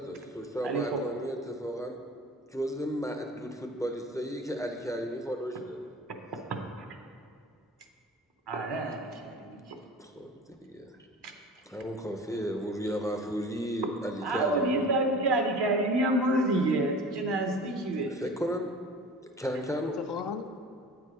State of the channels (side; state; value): both; normal; correlation 0.40